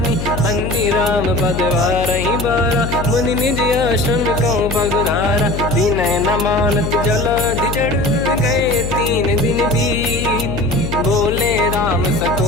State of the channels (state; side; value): noise; left; hum, 5 dB below the sound